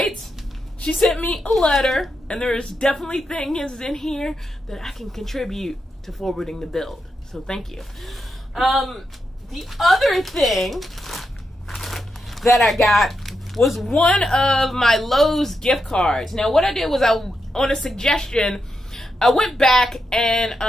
she sent me a letter, and there's definitely things in here that I can contribute to forwarding the build. So thank you. The other thing that I got was one of my Lowe's gift cards. Now, what I did was on a suggestion, I went back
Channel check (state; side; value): normal; both; correlation 0.85